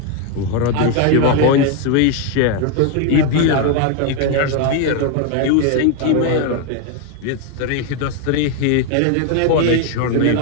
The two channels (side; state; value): both; different; correlation 0.01